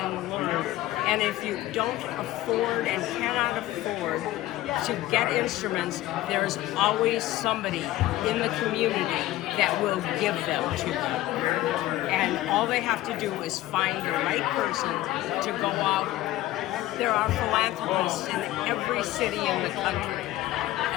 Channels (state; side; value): quieter; right; 15.9 dB